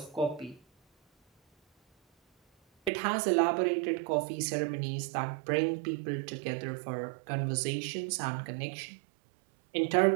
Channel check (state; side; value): drops out; left; at 2.9 s